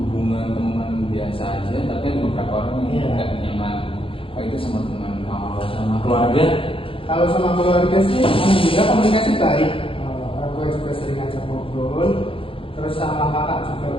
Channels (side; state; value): right; late; 0.26 ms